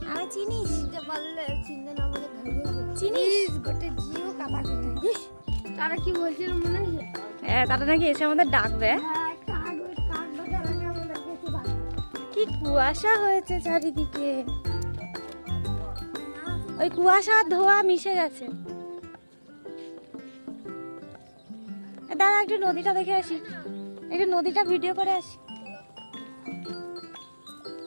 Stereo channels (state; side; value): inverted; both; correlation -1.00